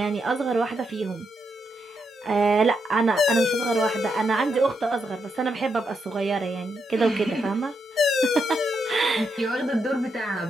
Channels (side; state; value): both; normal; correlation 0.82